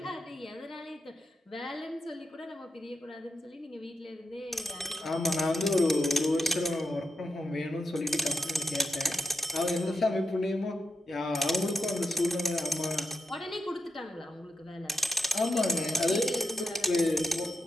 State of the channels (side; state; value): both; normal; correlation 0.87